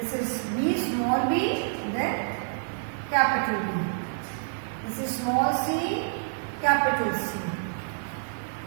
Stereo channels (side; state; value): left; silent; digital silence